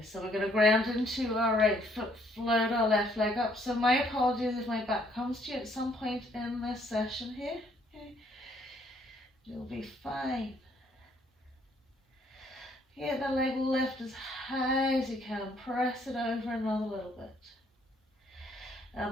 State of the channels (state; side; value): normal; both; correlation 0.66